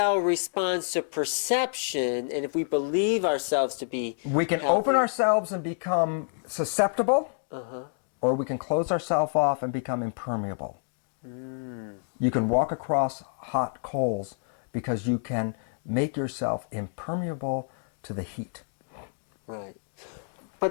responds to perception, and if we believe ourselves to be we can healthy, open ourselves and become susceptible, or we can close ourselves off and become impermeable. You can walk across hot coals because you can make yourself impermeable to the heat. Right.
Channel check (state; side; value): silent; right; digital silence